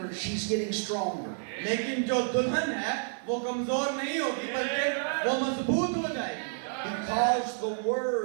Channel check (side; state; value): left; silent; 58 dB below the other